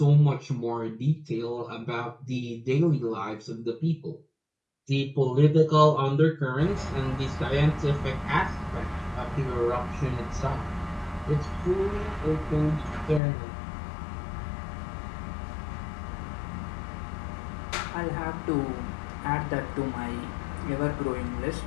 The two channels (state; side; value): drops out; right; at 13.2 s